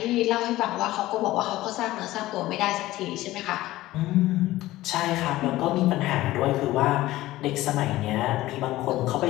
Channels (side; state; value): right; quieter; 16.6 dB